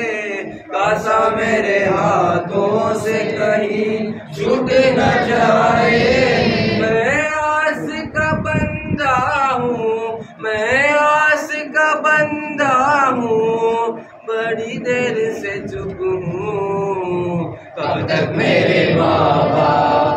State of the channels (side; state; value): both; identical; correlation 1.00